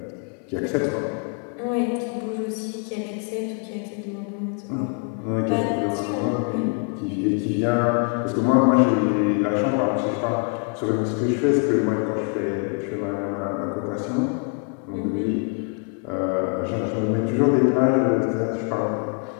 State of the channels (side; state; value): right; quieter; 36.7 dB